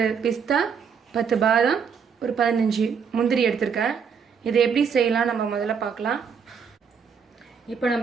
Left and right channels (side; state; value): left; quieter; 6.6 dB